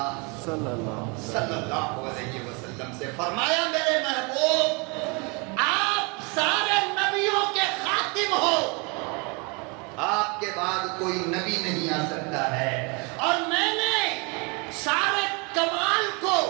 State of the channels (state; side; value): quieter; left; 30.9 dB